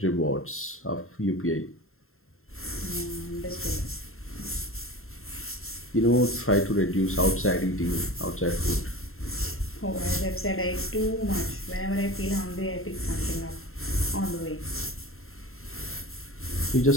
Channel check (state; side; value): late; right; 0.62 ms